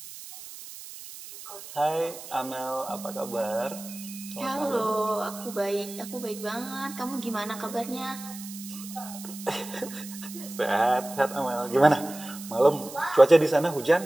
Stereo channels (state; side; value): noise; right; hiss, 14 dB below the sound